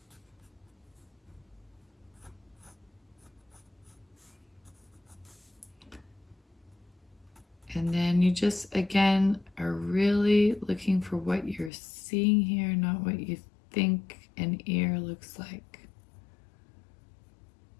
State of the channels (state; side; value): drops out; right; at 11.7 s